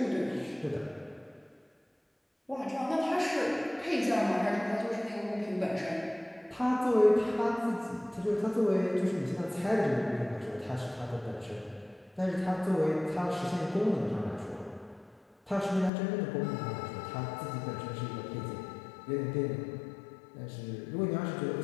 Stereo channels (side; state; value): right; drops out; at 15.9 s